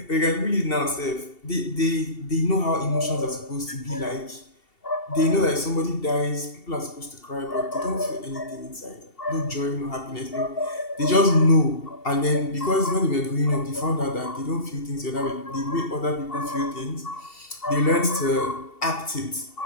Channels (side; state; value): right; late; 2.7 ms